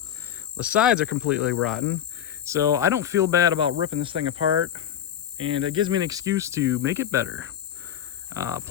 The sides are completely rotten, so I don't feel bad about ripping this thing apart, and it gives me an excuse to make it better.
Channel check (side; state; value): right; quieter; 9.9 dB